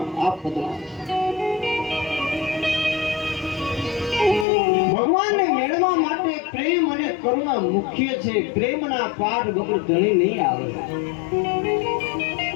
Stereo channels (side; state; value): right; drops out; at 4.5 s